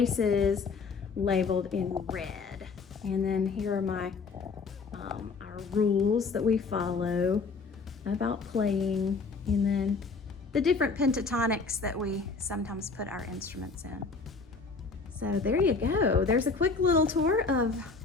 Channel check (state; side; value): quieter; right; 4.5 dB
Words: labeled in red. And then here are my our rules that we follow about playing, and then the different pentatonics that we sometimes put our instruments in. So there you go. There's a quick little tour of